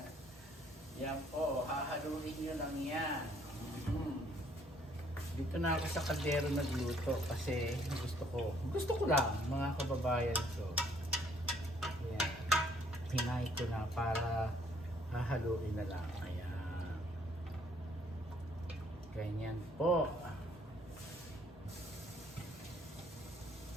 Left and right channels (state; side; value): normal; both; correlation 0.63